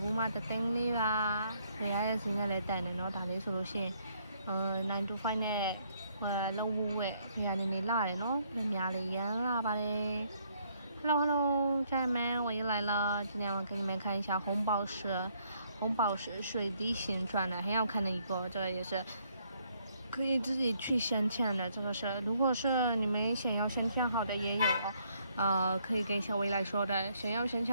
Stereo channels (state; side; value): inverted; both; correlation -0.70